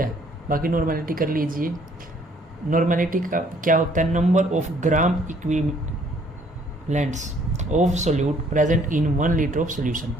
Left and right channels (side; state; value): both; normal; correlation 0.62